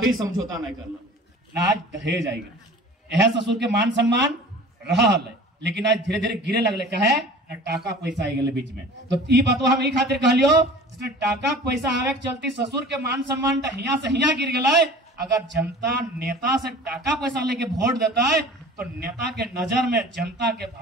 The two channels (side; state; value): both; normal; correlation 0.43